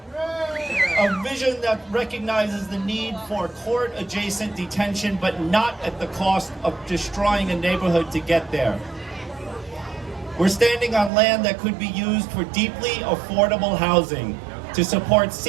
A vision that recognizes the need for court-adjacent detention, but not at the cost of destroying a neighborhood to get there. We're standing on land that could be used for deeply affordable housing, to support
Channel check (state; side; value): drops out; left; at 11.1 s